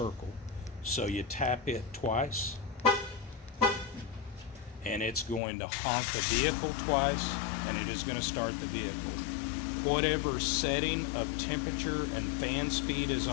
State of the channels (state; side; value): drops out; right; at 5.4 s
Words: So you tap it twice and it's going to honk the vehicle twice and it is going to start the vehicle. Whatever setting of temperature and fan speed is